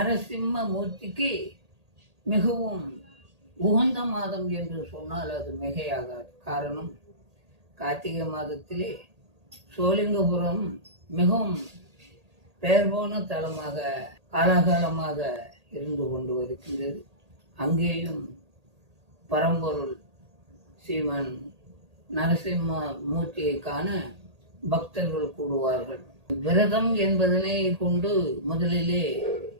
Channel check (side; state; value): left; late; 1.8 ms